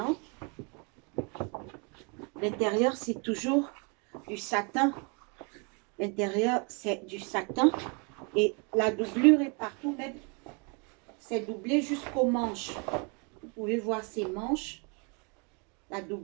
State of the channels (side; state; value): left; quieter; 33.8 dB